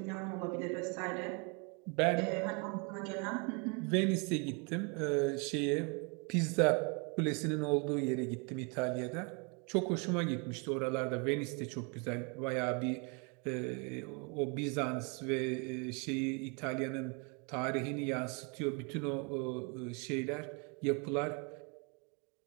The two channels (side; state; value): left; quieter; 33.8 dB